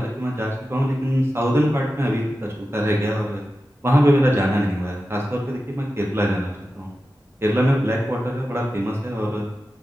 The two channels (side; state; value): both; normal; correlation 0.92